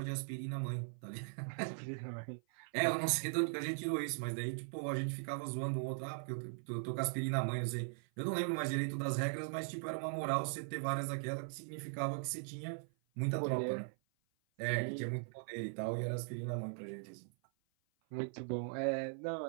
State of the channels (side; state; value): left; silent; 51 dB below the other